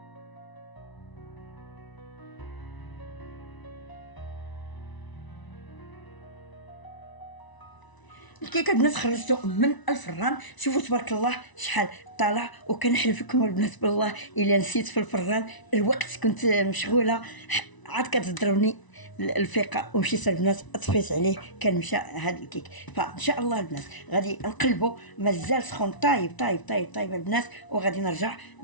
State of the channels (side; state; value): right; late; 1.0 ms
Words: الكيكه البنات خرجته من الفران، شوفوا تبارك الله شحال طالع. وكنحلف لكم البنات بالله الا نسيت في الفران الوقت، كنت مشغوله عاد كتضربني الفيقه ومشيت البنات طفيت عليه، كان مشى هذا الكيك. فان شاء الله البنات غادي نقلبوا، مازال سخون طايب طايب طايب طايب البنات، وغادي نرجع